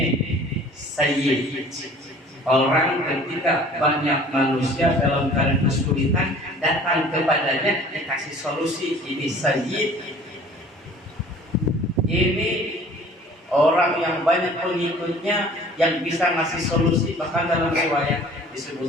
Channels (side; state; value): both; normal; correlation 0.49